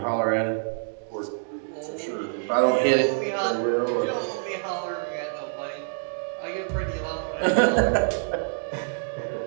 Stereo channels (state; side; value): silent; left; digital silence